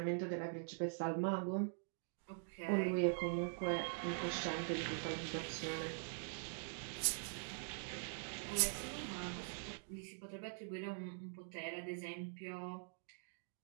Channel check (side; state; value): left; silent; digital silence